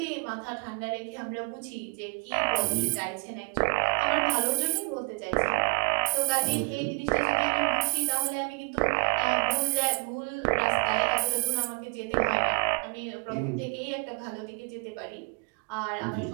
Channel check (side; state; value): left; quieter; 37.5 dB